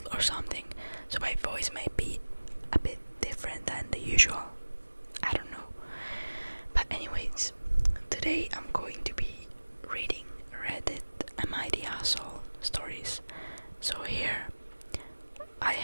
or something, so my voice may be a bit different than the usual. I don't know. But anyways, today I'm going to be reading Reddit AITA stories. So here I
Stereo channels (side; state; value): both; inverted; correlation -1.00